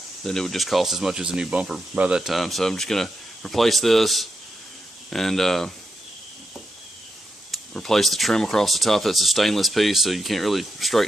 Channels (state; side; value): normal; both; correlation 0.84